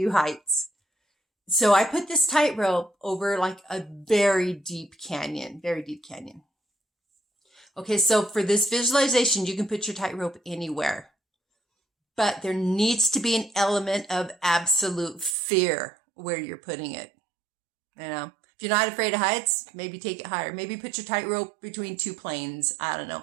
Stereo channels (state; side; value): drops out; left; at 15.4 s